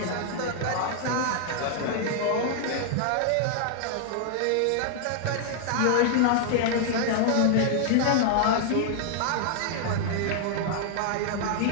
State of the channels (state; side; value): different; both; correlation 0.00